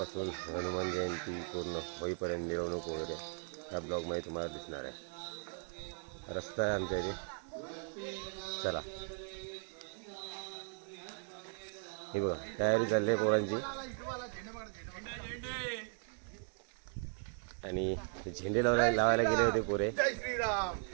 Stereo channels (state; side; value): silent; left; 53 dB below the other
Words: हनुमान जयंती पूर्ण होईपर्यंत मिरवणूक वगैरे ह्या ब्लॉगमध्ये तुम्हाला दिसणार आहे। रस्ता आहे आमच्या इथे, चला। हे बघा, तयारी चालली आहे पोरांची आणि झेंडे लावायला गेले होते पोरे। जय श्रीराम,